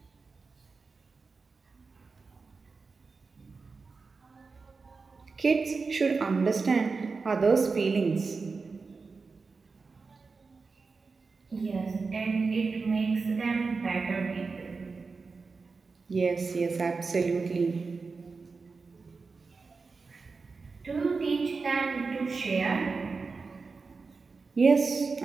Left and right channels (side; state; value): left; quieter; 4.4 dB